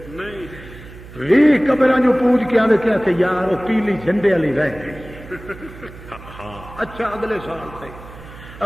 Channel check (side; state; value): right; noise; hum, 17 dB below the sound